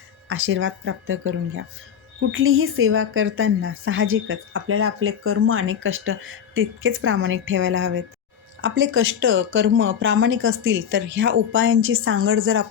आशीर्वाद प्राप्त करून घ्या. कुठलीही सेवा करताना साहजिकच आपल्याला आपले कर्म आणि कष्ट तितकेच प्रामाणिक ठेवायला हवेत. आपले कष्ट, कर्म प्रामाणिक असतील तर ह्या उपायांची सांगड जर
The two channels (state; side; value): quieter; right; 8.2 dB